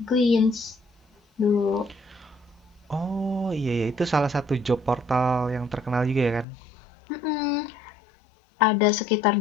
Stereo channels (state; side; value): drops out; right; at 6.5 s